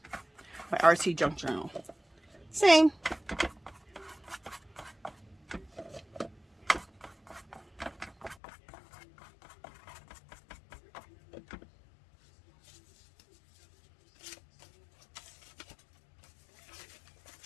my RC junk journal. Same.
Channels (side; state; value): right; drops out; at 8.3 s